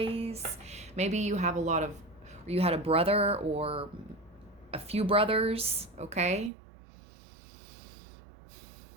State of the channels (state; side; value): drops out; left; at 6.5 s